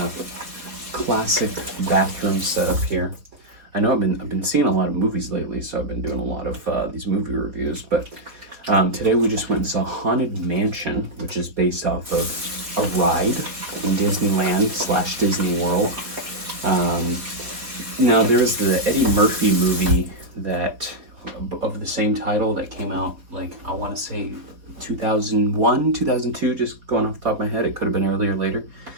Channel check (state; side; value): late; left; 4.0 ms